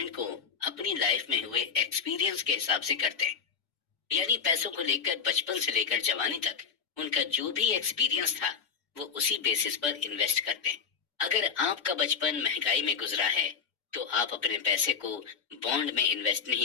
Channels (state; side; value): quieter; right; 6.4 dB